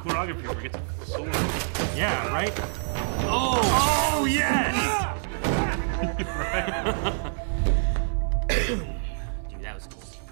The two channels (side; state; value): left; silent; digital silence